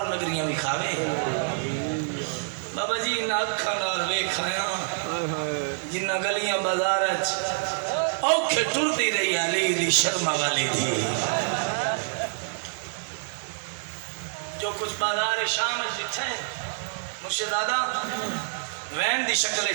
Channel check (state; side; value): silent; left; 60 dB below the other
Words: نگریاں بھی کھاوے بابا جی انہا اکھا نال ویکھایا جنہ گلیاں بازار اوکھے ٹر دی رہی علی دی شرما والی تھی جو کچھ بازار شام جتھے مرشد دادا وین دی